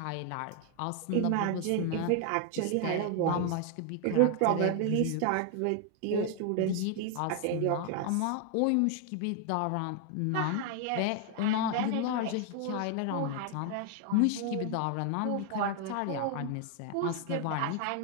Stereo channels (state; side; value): different; both; correlation 0.00